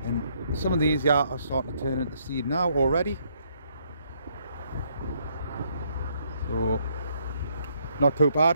And some of these here are starting to turn into seed now already, so not too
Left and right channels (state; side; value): inverted; both; correlation -0.70